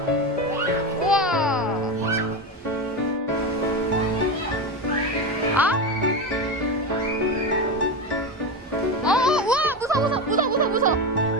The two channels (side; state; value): both; normal; correlation 0.18